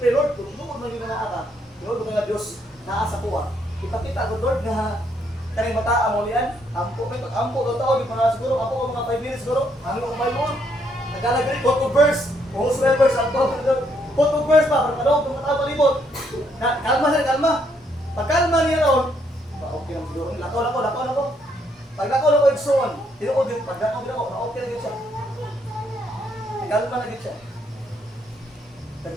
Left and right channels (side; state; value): both; normal; correlation 0.72